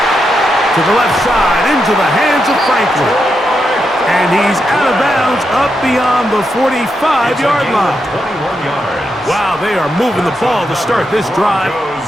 To the left side, into the hands of Franklin. And he's out of bounds up beyond the 45-yard line. 21 yards. Wow, they are moving the ball to start this drive.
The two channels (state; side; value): normal; both; correlation 0.84